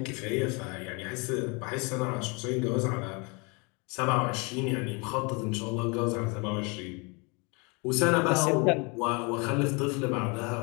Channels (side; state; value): right; quieter; 30.6 dB